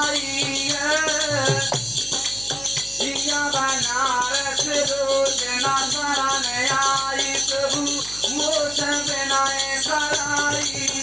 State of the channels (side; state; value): right; noise; hum, 18 dB below the sound